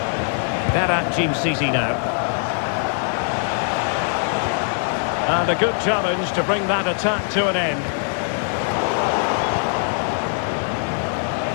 Berat Jim City now. And a good challenge to bring that attack to an end.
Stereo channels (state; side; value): silent; right; 58 dB below the other